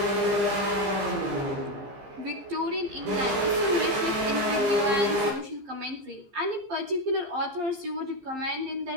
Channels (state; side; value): late; left; 15 ms